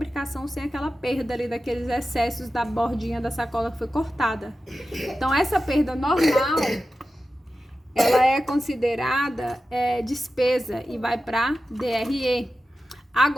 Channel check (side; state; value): both; normal; correlation 0.93